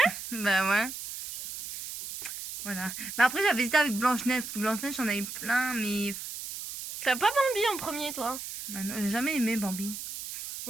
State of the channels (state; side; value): noise; right; hiss, 8 dB below the sound